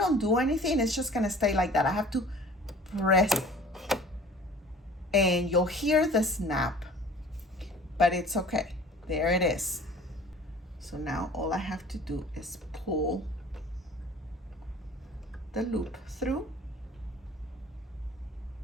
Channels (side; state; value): both; normal; correlation 0.47